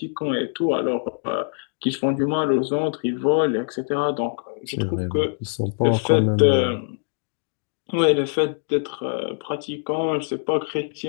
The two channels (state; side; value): silent; right; digital silence